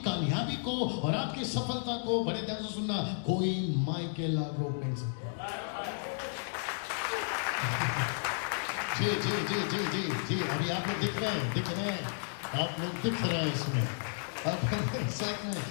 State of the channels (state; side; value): silent; right; digital silence